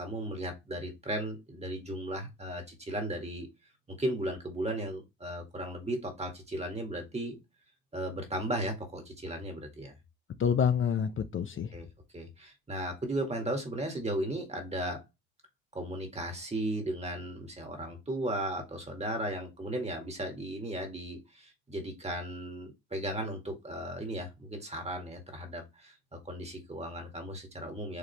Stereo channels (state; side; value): normal; both; correlation 0.40